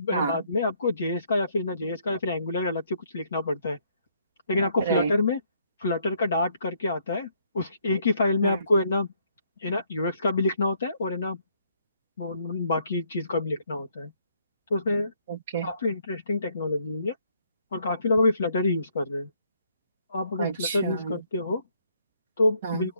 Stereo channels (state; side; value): inverted; both; correlation -0.68